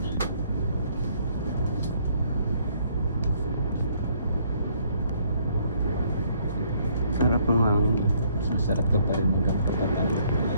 Sarap ng hangin. Masarap ka pa rin mag-patatalo.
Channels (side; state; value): both; inverted; correlation -0.66